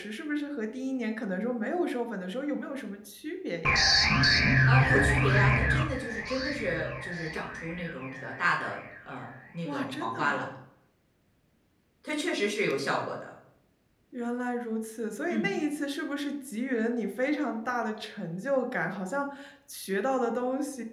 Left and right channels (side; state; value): both; identical; correlation 1.00